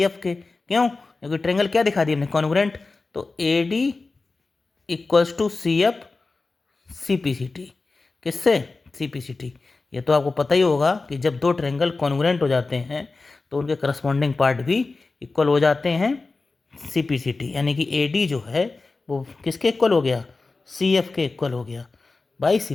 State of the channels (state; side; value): quieter; right; 3.7 dB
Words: एफ के। क्यों, क्योंकि ट्रायंगल क्या दिखा दिया हमने, कॉन्ग्रुएंट। तो A D equals to C F C P C T, किससे, सी पी सी टी। ये तो आपको पता ही होगा कि जब 2 ट्रायंगल कॉन्ग्रुएंट हो जाते हैं तो उनके करस्पॉन्डिंग पार्ट भी इक्वल हो जाते हैं, सी पी सी टी, यानी कि ए डी जो है वो किसके इक्वल हो गया, सी एफ के इक्वल हो गया by C